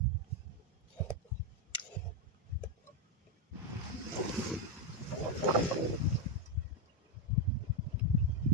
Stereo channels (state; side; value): normal; both; correlation 0.04